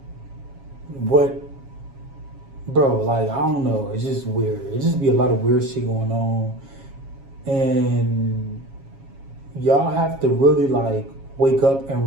what, bro, like, I don't know. It's just weird. It just be a lot of weird shit going on. And y'all have to really like wake up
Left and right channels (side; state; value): left; late; 7.3 ms